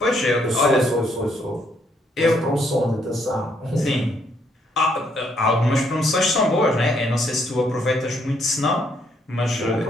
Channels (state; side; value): normal; both; correlation 0.71